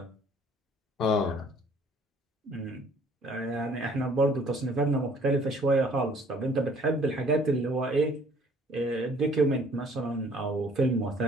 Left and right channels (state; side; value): normal; both; correlation 0.57